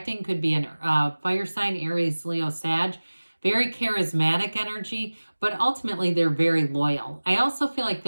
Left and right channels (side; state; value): both; inverted; correlation -1.00